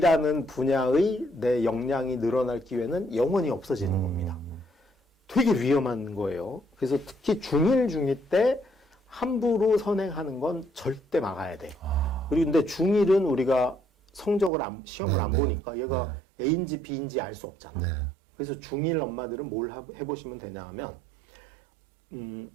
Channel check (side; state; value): left; drops out; at 14.5 s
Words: 분야의 내 역량이 늘어날 기회는 영원히 없어지는 겁니다. 되게 위험한 거예요. 그래서 특히 중1, 중2 때 함부로 선행하는 건 절대 막아야 돼. 그리고 근데 중1은 우리가 성적을 시험을 안 보니까 얘가 A인지 B인지 알 수 없잖아. 그래서 중1 엄마들은 뭘 해보시면 되냐 하면